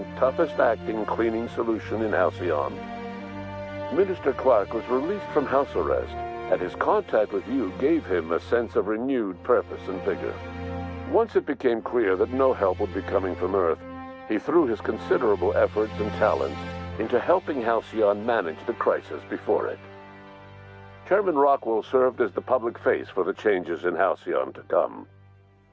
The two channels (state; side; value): identical; both; correlation 1.00